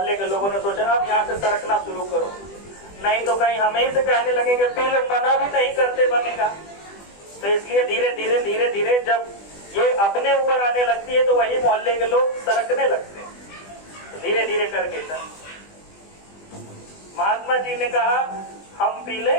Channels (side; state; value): right; late; 20 ms